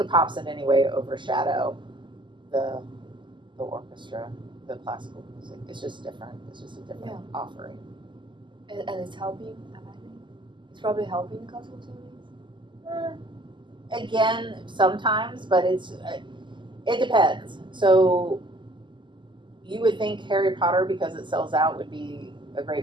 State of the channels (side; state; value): left; late; 0.23 ms